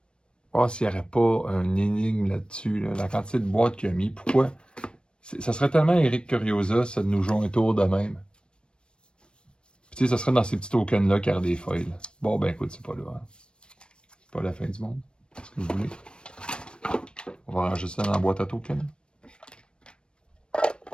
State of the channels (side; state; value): right; late; 0.054 ms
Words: Oh, s'il n'y aurait pas un énigme là-dessus, là, la quantité de boîtes qu'il a mis, pourquoi? Ça serait tellement Eric Curiosa, ça de nous jouer un tour de même. Puis, tu sais, ça serait dans ces petits tokens-là qu'il y aurait des foils. Bon, ben écoute, c'est pas là. Hein. C'est pas la fin du monde. Qu'est-ce que vous voulez? On va ranger ça dans la boîte à tokens.